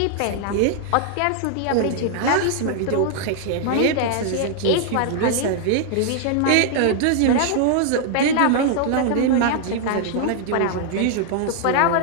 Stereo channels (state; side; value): different; both; correlation 0.00